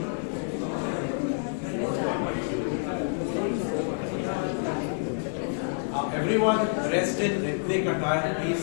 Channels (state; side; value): silent; right; digital silence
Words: Everyone dressed in ethnic attire,